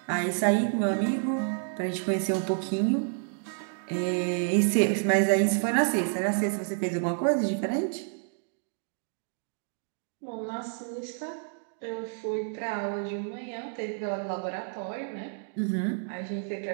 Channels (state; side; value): silent; left; digital silence